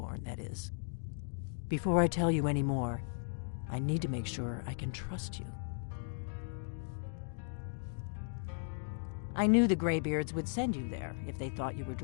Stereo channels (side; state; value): right; silent; digital silence